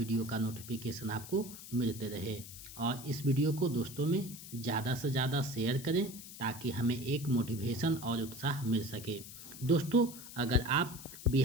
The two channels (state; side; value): noise; left; hiss, 14 dB below the sound